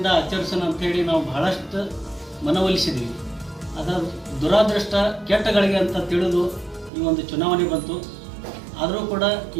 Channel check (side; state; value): left; drops out; at 6.9 s